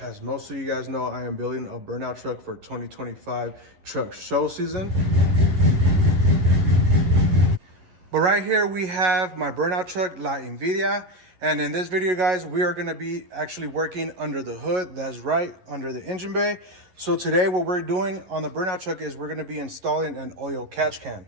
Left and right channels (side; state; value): left; late; 11 ms